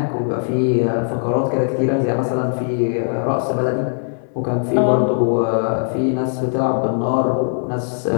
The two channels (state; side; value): silent; right; 66 dB below the other